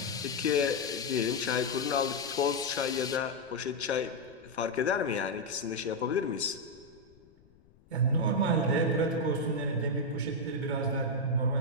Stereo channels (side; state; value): left; noise; rumble, 28 dB below the sound